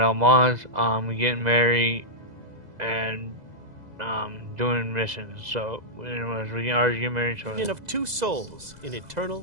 mods, getting married, and, doing missions. So, anyways, we can already get married, so... Union of two souls in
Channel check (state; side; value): late; left; 2.0 ms